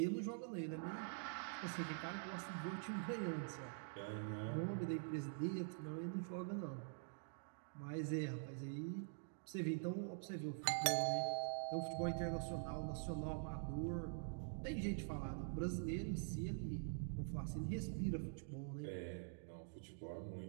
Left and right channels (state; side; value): silent; left; digital silence